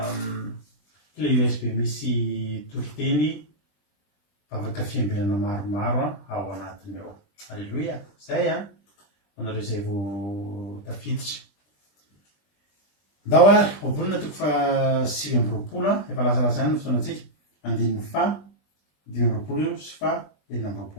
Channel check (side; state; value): right; late; 20 ms